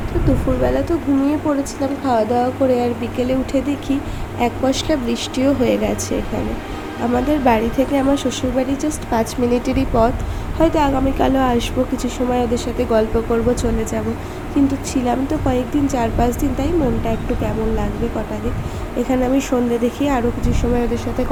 তো দুপুরবেলা তো ঘুমিয়ে পড়েছিলাম খাওয়া দাওয়া করে, আর বিকেলে উঠে দেখি এক পশলা বৃষ্টিও হয়ে গেছে এখানে। আমাদের বাড়ি থেকে আমার শ্বশুরবাড়ি জাস্ট 5 মিনিটেরই পথ। হয়তো আগামীকালও আসবো, কিছু সময় ওদের সাথে গল্প করব, চলে যাব। কিন্তু ছিলাম তো কয়েকদিন, 4-5 দিন, তাই মনটা একটু কেমন লাগবে কটা দিন। এখানে আমি সন্ধ্যে দেখি আরও কিছু সময় ওদের সাথে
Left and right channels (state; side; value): identical; both; correlation 1.00